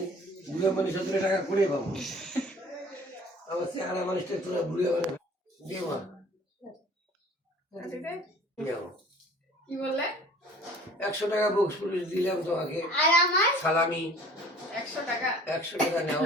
বুড়া মানুষ 17 টাকা করে পাবো। আমার চেহারা মানুষটা তোরা বুড়া মানে দিয়ে মা নাও। কি বললে? 100 টাকা বক্স পুলিশ দিলাম তোমাকে, আর আমার সালামি 100 টাকা। 100 টাকা নাও।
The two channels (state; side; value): normal; both; correlation 0.49